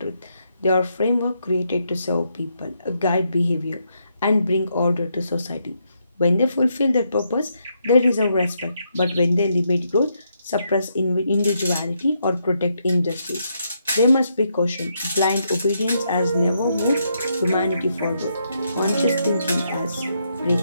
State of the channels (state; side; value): inverted; both; correlation -0.78